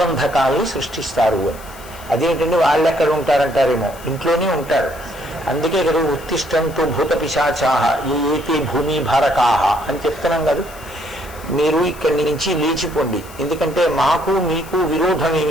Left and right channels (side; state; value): left; noise; hiss, 20 dB below the sound